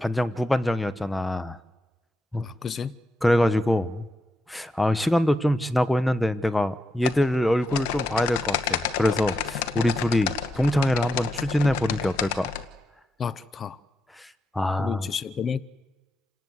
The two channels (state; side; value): normal; both; correlation 0.85